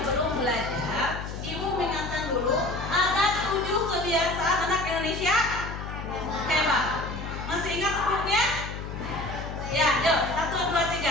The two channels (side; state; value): left; noise; hum, 8 dB below the sound